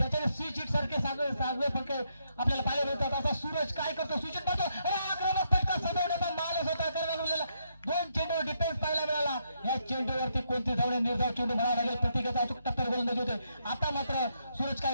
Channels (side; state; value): both; inverted; correlation -0.77